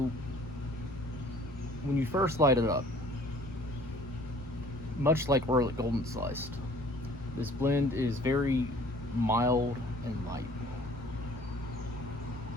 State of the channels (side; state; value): both; normal; correlation 0.53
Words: when you first light it up, much like Orlik Golden Sliced, this blend is very mild and light.